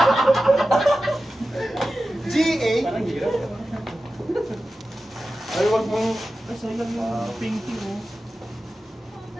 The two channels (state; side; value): normal; both; correlation 0.94